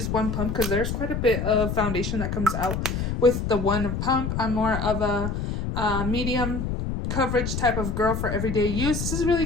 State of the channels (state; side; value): noise; left; rumble, 2 dB below the sound